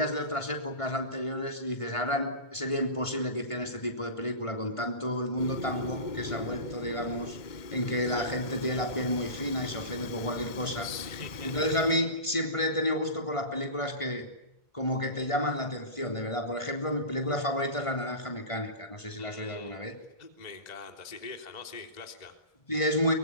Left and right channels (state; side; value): late; right; 1.5 ms